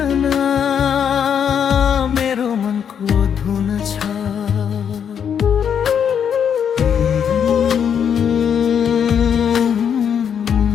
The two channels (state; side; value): quieter; right; 8.0 dB